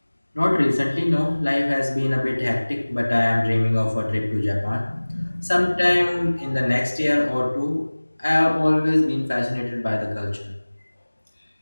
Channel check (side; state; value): both; inverted; correlation -1.00